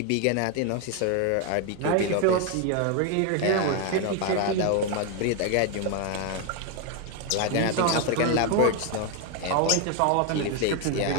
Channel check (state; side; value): different; both; correlation 0.01